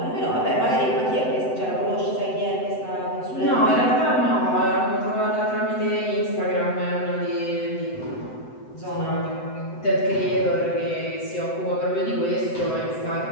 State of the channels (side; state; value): right; late; 7.9 ms